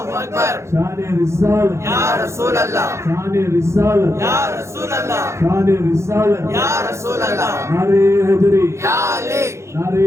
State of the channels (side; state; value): left; late; 0.13 ms